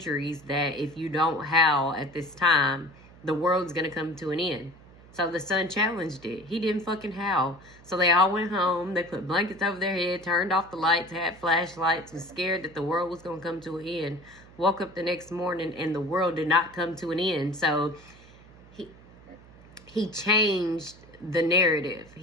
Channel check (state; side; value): noise; right; hum, 23 dB below the sound